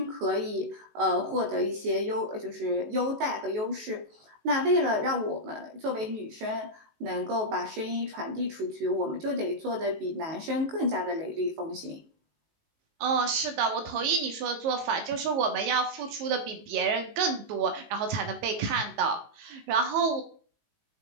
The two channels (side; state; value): left; late; 19 ms